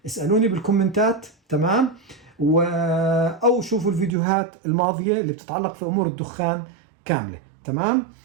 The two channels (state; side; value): drops out; left; at 4.1 s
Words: اسألوني بالكومنتات. تمام؟ أو شوفوا الفيديوهات الماضية اللي بتتعلق في أمور الدخان كاملة. تمام؟